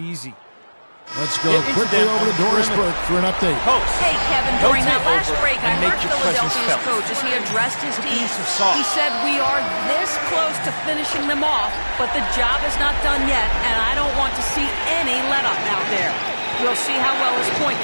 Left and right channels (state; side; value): inverted; both; correlation -1.00